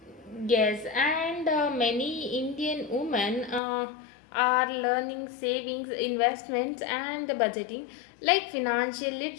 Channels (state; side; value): drops out; right; at 3.6 s